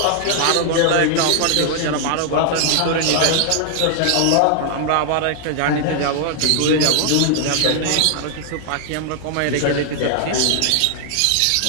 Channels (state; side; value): different; both; correlation 0.00